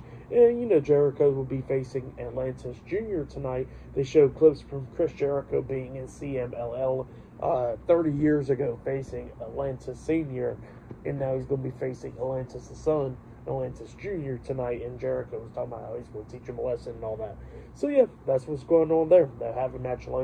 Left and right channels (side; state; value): both; identical; correlation 1.00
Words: And, Jericho will be facing Atlantis Jr. tonight. They show clips from Chris Jericho being in CMLL 30 years ago, facing Atlantis Sr., and now he's going to be facing Atlantis' son, Atlantis Jr. tonight, and Jericho was talking about how he's going to teach him a lesson and all that. So yeah, that's what's going on there. They'll have a match